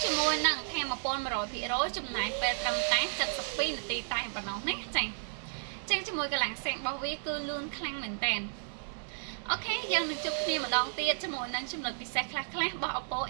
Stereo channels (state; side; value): silent; left; digital silence